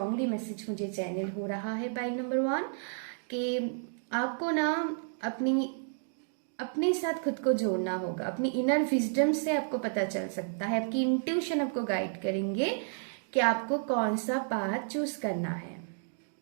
मैसेज मुझे चैनल हो रहा है पाइल नंबर 1, कि आपको ना अपने साथ खुद को जोड़ना होगा, अपनी इनर विजडम से आपको पता चल सकता है, आपकी इंट्यूशन आपको गाइड करेंगे कि आपको कौन सा पाथ चूज करना है।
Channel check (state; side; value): silent; left; digital silence